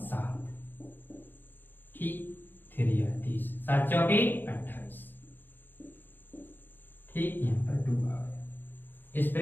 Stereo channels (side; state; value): right; late; 0.093 ms